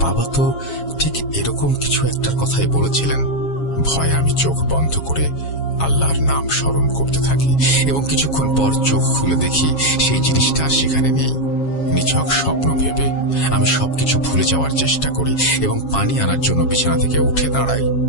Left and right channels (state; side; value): late; right; 7.3 ms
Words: বাবা তো ঠিক এরকম কিছু একটার কথাই বলেছিলেন। ভয়ে আমি চোখ বন্ধ করে আল্লাহর নাম স্মরণ করতে থাকি এবং কিছুক্ষণ পর চোখ খুলে দেখি সেই জিনিসটা আর সেখানে নেই। নিছক স্বপ্ন ভেবে আমি সবকিছু ভুলে যাওয়ার চেষ্টা করি এবং পানি আনার জন্য বিছানা থেকে উঠে দাঁড়াই।